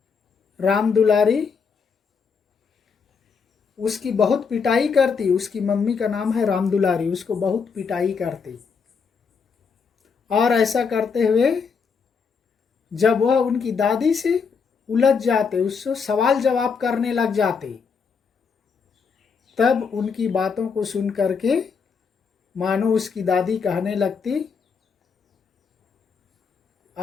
राम दुलारी उसकी बहुत पिटाई करती। उसकी मम्मी का नाम है राम दुलारी, उसको बहुत पिटाई करती। और ऐसा करते हुए जब वह उनकी दादी से उलझ जाते, उससे सवाल जवाब करने लग जाते, तब उनकी बातों को सुन करके मानो उसकी दादी कहने लगती,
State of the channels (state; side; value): quieter; right; 5.7 dB